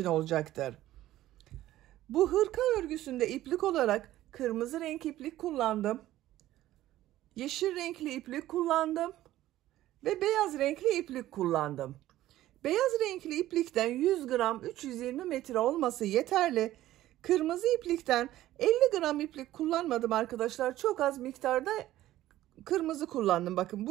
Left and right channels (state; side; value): quieter; left; 14.5 dB